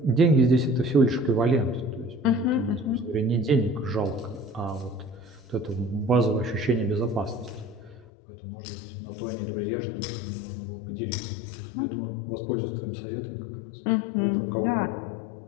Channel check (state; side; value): drops out; right; at 8.1 s